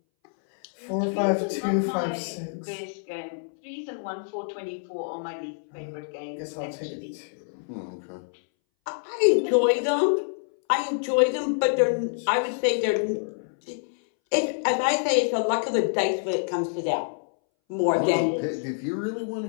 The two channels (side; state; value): right; silent; 60 dB below the other